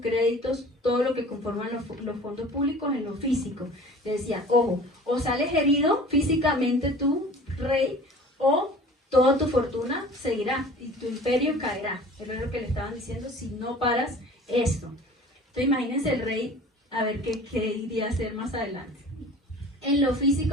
todo lo que conforman los fondos públicos en lo físico. Le decía, ojo, o sales herido físicamente tú, rey, o toda tu fortuna seguirá y tu imperio caerá. Es lo que le estaban diciendo si no paras esto. Entonces imagínense el rey, a ver qué iría a hacer más adelante. En lo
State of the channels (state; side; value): normal; both; correlation 0.44